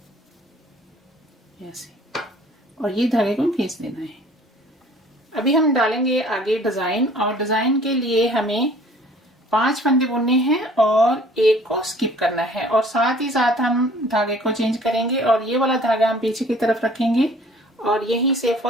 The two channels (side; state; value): both; normal; correlation 0.52